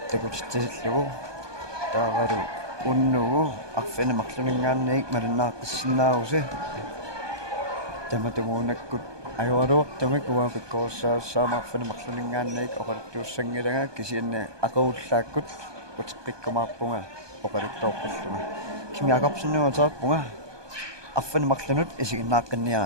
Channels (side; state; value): left; late; 1.2 ms